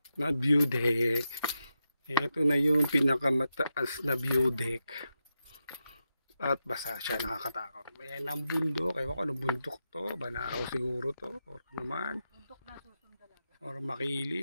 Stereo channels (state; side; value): inverted; both; correlation -0.88